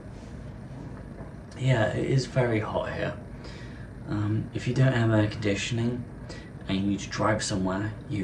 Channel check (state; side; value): identical; both; correlation 1.00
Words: yeah, it is very hot here. If you don't have air conditioning and you need to drive somewhere,